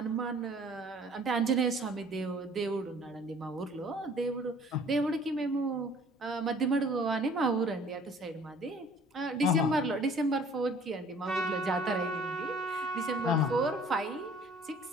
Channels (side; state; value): both; normal; correlation 0.53